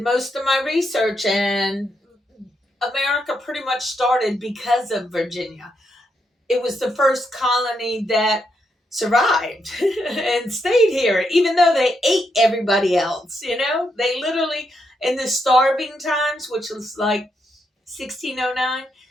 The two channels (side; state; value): both; normal; correlation 0.80